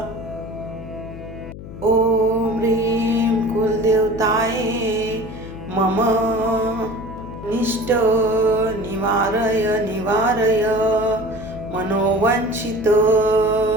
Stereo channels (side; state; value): left; noise; hum, 13 dB below the sound